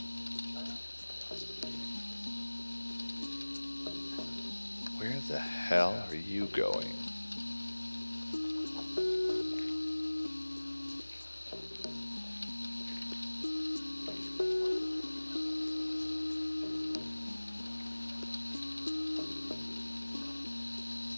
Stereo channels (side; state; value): both; inverted; correlation -1.00